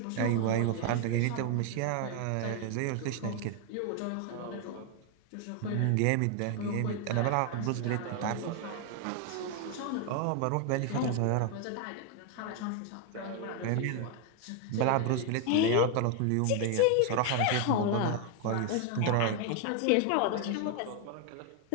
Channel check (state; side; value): different; both; correlation 0.00